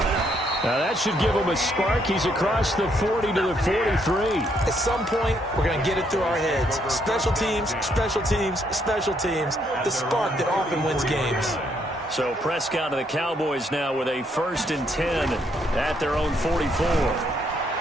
Now that should give him a spark. He's across the 40 to the 43. At some point, we're going to get it through our heads. Special teams, special teams, special teams. The spark that often wins games. So Prescott and the Cowboys now with a 1st and 10 at their own 44.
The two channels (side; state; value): both; normal; correlation 0.72